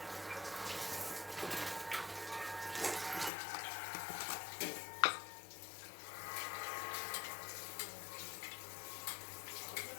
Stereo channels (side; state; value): right; drops out; at 3.3 s